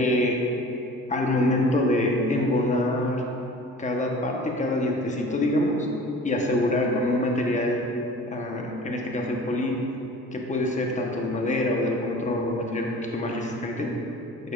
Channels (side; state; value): both; normal; correlation 0.43